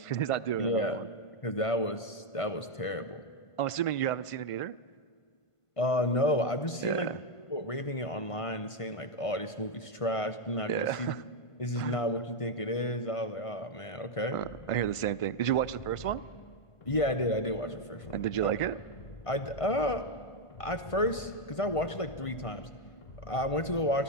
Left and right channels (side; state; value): right; late; 1.5 ms